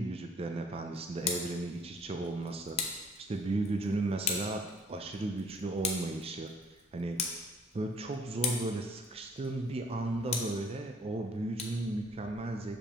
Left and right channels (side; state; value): both; normal; correlation 0.59